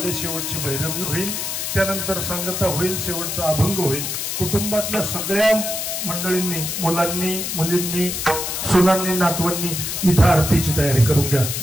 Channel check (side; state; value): left; noise; hiss, 3 dB below the sound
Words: शेवटची भैरवी होईल, त्यानंतर सांगता होईल, शेवटचा अभंग होईल. कुटुंबातल्या सगळ्या मंडळींनी, मुलांनी, मुलींनी, सुनांनी, नातवांनी इथं आरतीची तयारी करून घ्या.